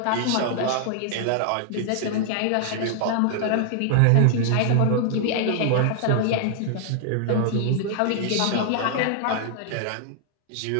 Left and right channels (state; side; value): different; both; correlation -0.01